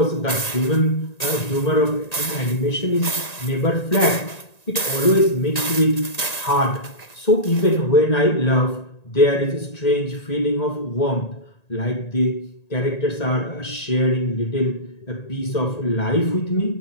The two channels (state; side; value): late; right; 1.9 ms